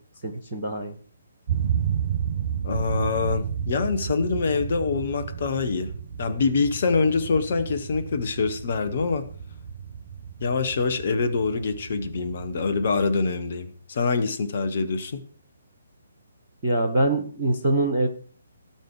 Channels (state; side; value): inverted; both; correlation -0.70